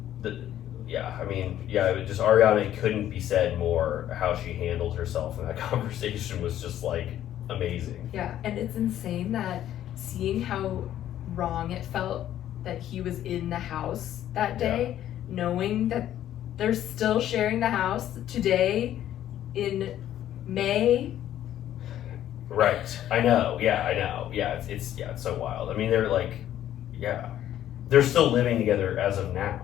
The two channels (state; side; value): quieter; right; 11.8 dB